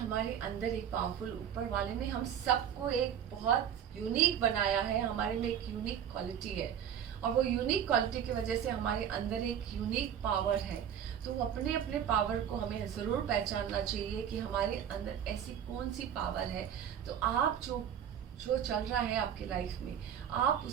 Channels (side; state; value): left; quieter; 9.1 dB